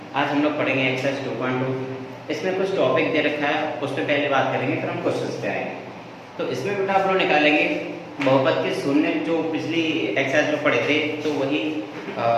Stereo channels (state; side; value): identical; both; correlation 1.00